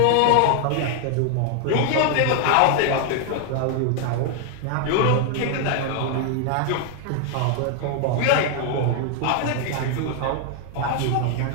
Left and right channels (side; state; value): both; different; correlation 0.00